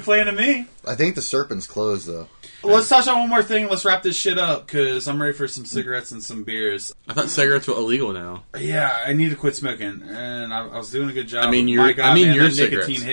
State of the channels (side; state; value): both; inverted; correlation -1.00